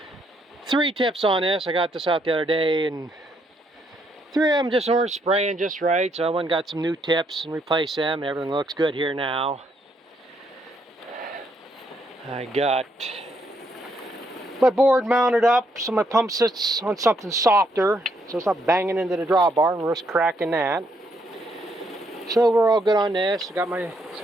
3 tips on this. I got this out the other day and 3 of them just weren't spraying just right, so I went and got some new tips and replaced them. Everything looks good here now. I got my board mounted up so my pump sits on something softer so it's not banging into the drawbar and risk cracking that. So we're all good on this. I got my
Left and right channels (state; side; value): normal; both; correlation 0.73